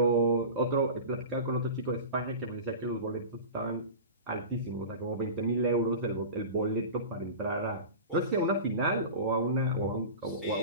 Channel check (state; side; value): inverted; both; correlation -0.32